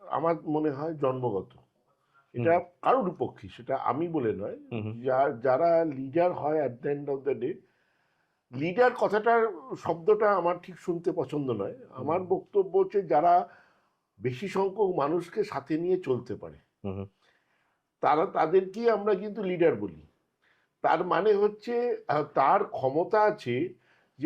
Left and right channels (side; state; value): both; identical; correlation 1.00